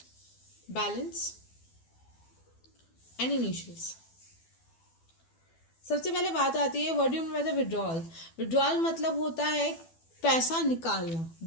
balance and initials. सबसे पहले बात आती है what do you mean by the withdrawal. Withdrawal मतलब होता है पैसा निकालना।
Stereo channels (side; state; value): right; late; 12 ms